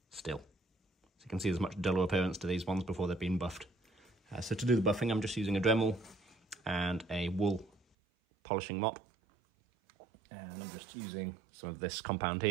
still. So you can see there's much duller appearance to these ones before they've been buffed. So to do the buffing, I'm just using a Dremel and a wool polishing mop. And I'm just using some of this compound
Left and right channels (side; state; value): left; drops out; at 7.8 s